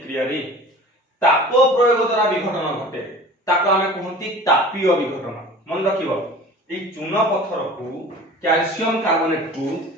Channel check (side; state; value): both; normal; correlation 0.41